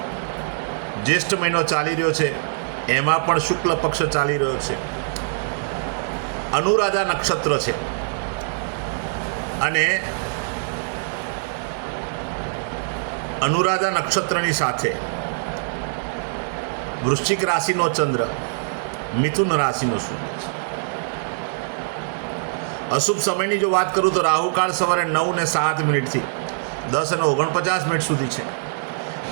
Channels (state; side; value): silent; left; digital silence